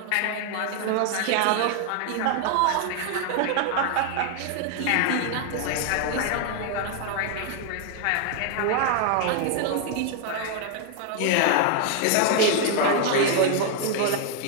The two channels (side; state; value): both; different; correlation 0.00